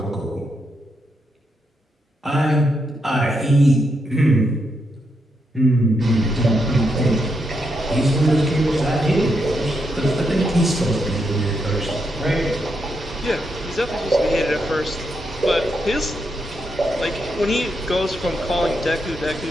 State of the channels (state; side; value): normal; both; correlation 0.81